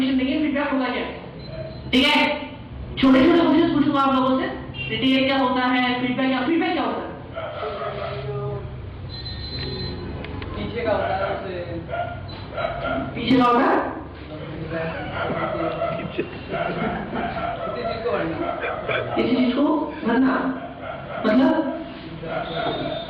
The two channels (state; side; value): identical; both; correlation 1.00